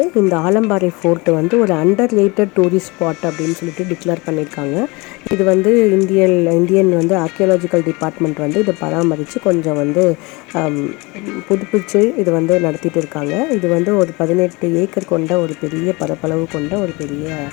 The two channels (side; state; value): right; quieter; 25.5 dB